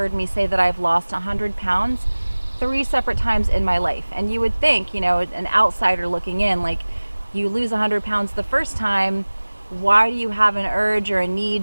me say that I've lost 100 pounds 3 separate times in my life. And you would think, you know, an outsider looking in, like, you lose 100 pounds the first time, why do you have an urge or a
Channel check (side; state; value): both; inverted; correlation -1.00